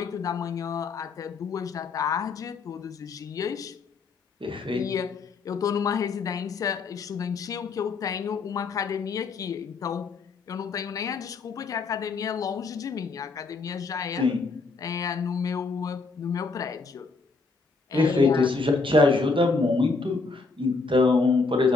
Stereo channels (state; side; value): quieter; right; 4.2 dB